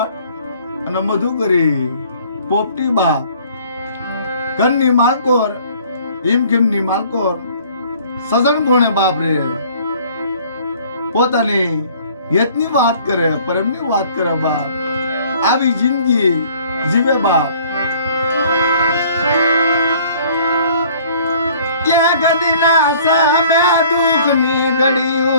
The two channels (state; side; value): inverted; both; correlation -0.54